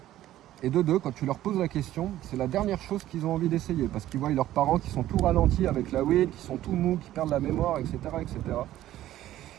Et de deux, quand tu leur poses la question, c'est la dernière chose qu'ils ont envie d'essayer, parce qu'ils voient leurs parents qui sont tout ralentis avec la weed, qui sont tout mous, qui perdent la mémoire, etc., etc.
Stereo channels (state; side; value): quieter; left; 13.7 dB